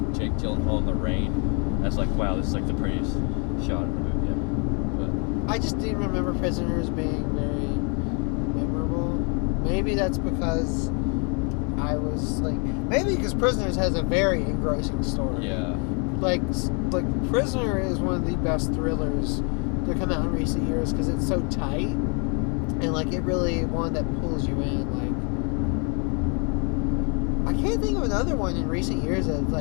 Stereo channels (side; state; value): right; quieter; 36.2 dB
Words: Jake Gyllenhaal in the rain. That's like, wow, this is like the prettiest shot of the movie ever. But I just didn't remember Prisoners being very memorable. Maybe that's because I was like, maybe because Prisoners has a very engrossing story. Yeah. Like Prisoner is one of the best thrillers to come out in recent years because it's so tight and like it really one that pulls you in. Like I can't think of another one in recent years that